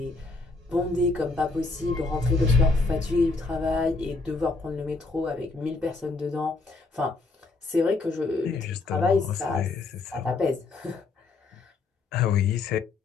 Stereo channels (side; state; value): right; quieter; 3.7 dB